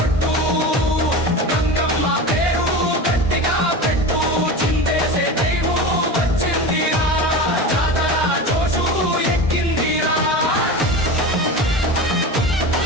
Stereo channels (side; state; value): both; normal; correlation 0.28